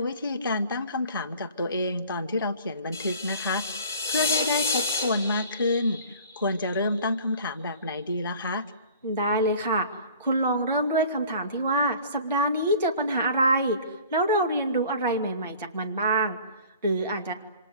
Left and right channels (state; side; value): inverted; both; correlation -0.47